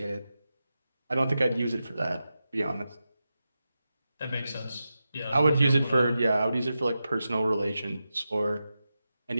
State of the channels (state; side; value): inverted; both; correlation -0.91